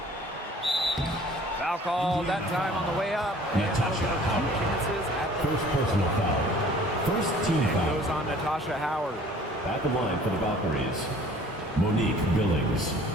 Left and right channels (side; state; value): both; normal; correlation 0.51